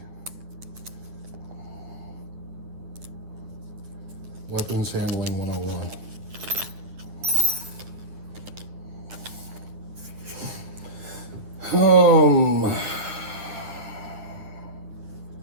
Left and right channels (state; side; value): late; left; 9.3 ms